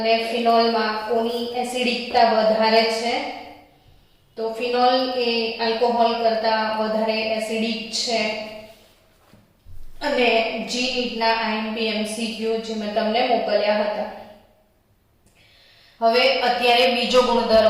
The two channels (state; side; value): identical; both; correlation 1.00